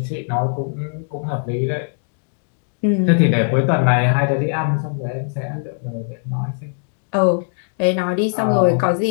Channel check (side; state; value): right; silent; digital silence